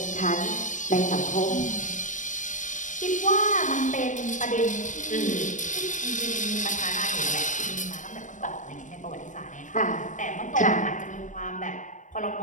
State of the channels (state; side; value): late; right; 0.36 ms